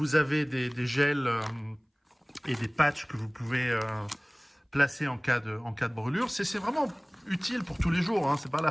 avez des gels et des patchs que vous pouvez placer en cas de brûlure. C'est vraiment utile pour tous les jours. Hein. C'est pas la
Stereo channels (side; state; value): both; identical; correlation 1.00